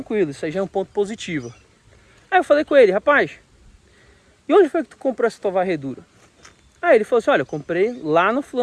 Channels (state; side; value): identical; both; correlation 1.00